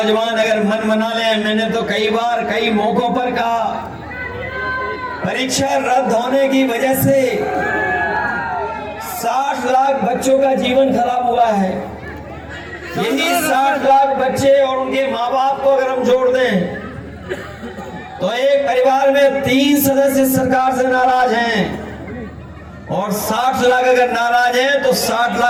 अगर मन बना ले, मैंने तो कई बार कई मौकों पर कहा, परीक्षा रद्द होने की वजह से 60 लाख बच्चों का जीवन खराब हुआ है। यही 60 लाख बच्चे और उनके माँ बाप को अगर हम जोड़ दें तो एक परिवार में 3 सदस्य सरकार से नाराज हैं, और 60 लाख अगर नाराज हैं तो 60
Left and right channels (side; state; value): both; identical; correlation 1.00